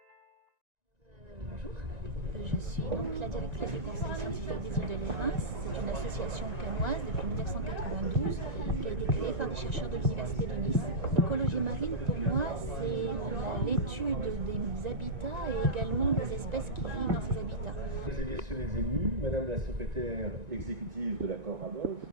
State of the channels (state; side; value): late; left; 1.9 ms